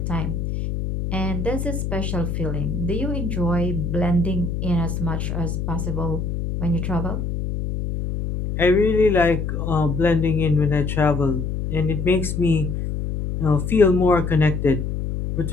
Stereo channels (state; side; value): noise; left; hum, 3 dB below the sound